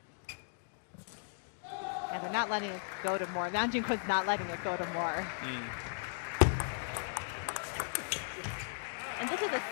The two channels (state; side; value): silent; right; digital silence